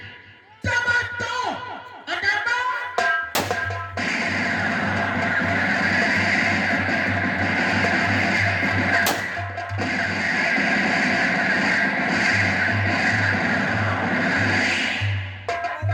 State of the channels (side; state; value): both; identical; correlation 1.00